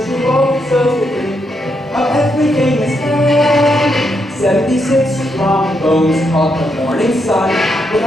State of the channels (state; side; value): normal; both; correlation 0.80